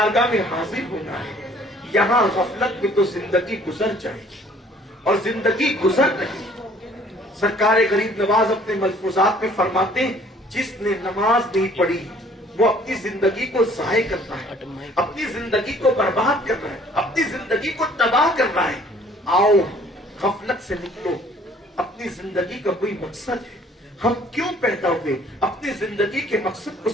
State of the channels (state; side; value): normal; both; correlation 0.57